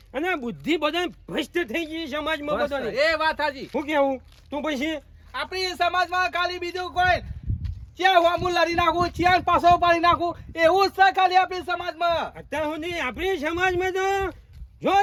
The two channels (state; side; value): identical; both; correlation 1.00